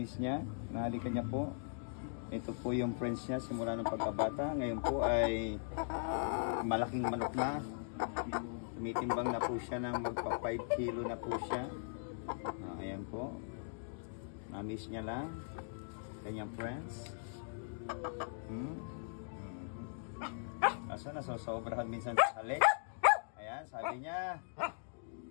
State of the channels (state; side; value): silent; right; digital silence